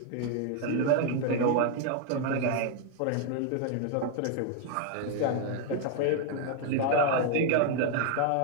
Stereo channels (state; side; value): different; both; correlation 0.00